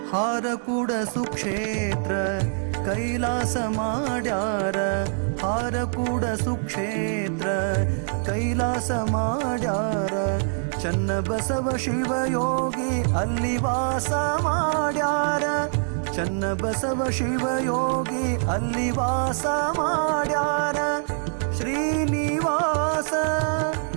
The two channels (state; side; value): silent; left; digital silence